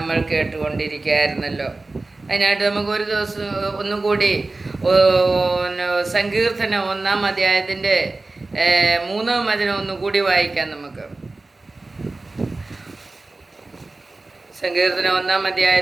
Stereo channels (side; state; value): left; quieter; 3.3 dB